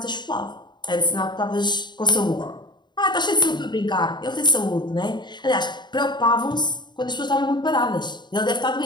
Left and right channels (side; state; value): right; late; 0.21 ms